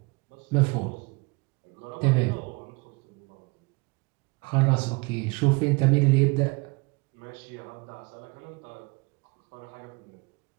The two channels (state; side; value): quieter; left; 27.9 dB